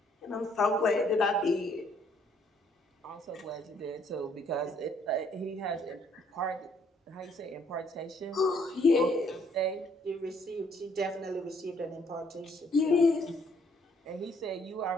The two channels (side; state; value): both; normal; correlation 0.66